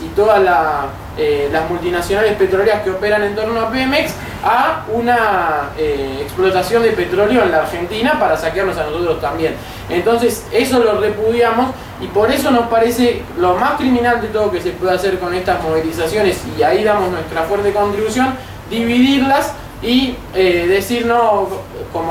y todas las multinacionales petroleras que operan en torno a Pemex a una explotación de petróleo en la Argentina para saquearnos a nosotros también. Entonces eso lo repudiamos y por eso nos parece lo más criminal de todo que se puede hacer con estas movilizaciones, y ahí damos nuestra fuerte contribución, dividirlas y decir no,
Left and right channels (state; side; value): identical; both; correlation 1.00